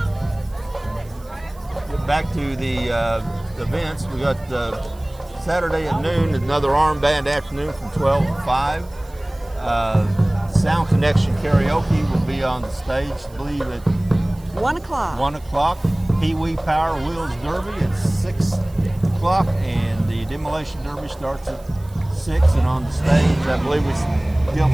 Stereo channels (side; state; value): right; noise; hiss, 27 dB below the sound